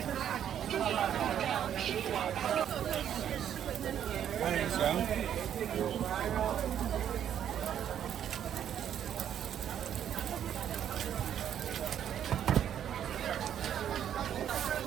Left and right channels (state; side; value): quieter; left; 9.7 dB